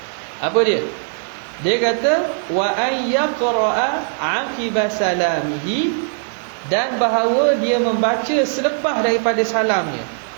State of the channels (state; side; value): silent; left; digital silence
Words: Apa dia? Dia kata wa ayyaqra'a 'aqiba salamihi, dan bahawa dia membaca selepas daripada salamnya.